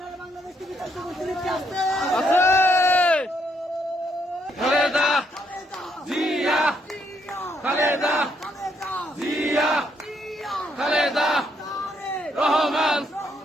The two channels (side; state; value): both; normal; correlation 0.74